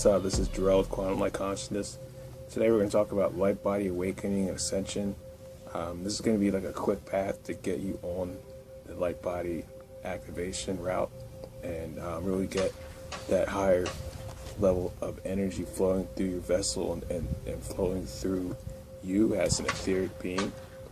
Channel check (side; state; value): both; identical; correlation 1.00